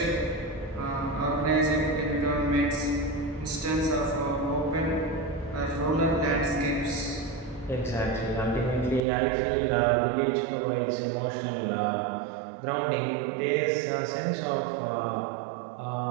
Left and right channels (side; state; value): left; drops out; at 9.0 s